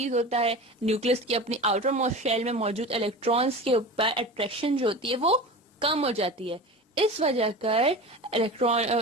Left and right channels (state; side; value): normal; both; correlation 0.32